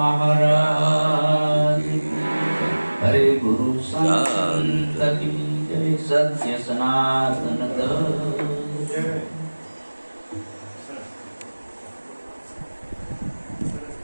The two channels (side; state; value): both; inverted; correlation -1.00